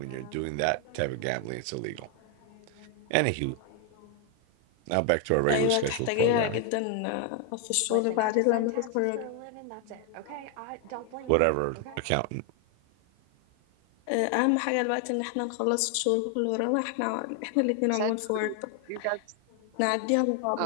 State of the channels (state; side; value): different; both; correlation 0.01